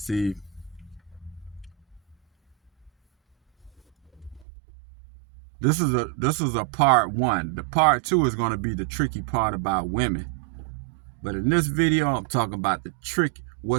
this is a part one. The part two is going to be the tricky part about women. But in this video, I'm talking about the trick.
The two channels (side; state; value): left; drops out; at 4.5 s